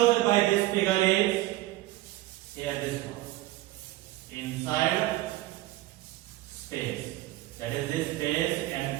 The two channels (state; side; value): quieter; left; 17.3 dB